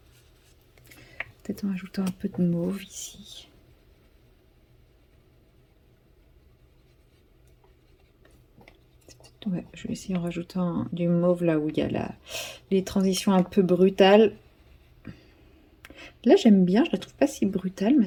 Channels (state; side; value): identical; both; correlation 1.00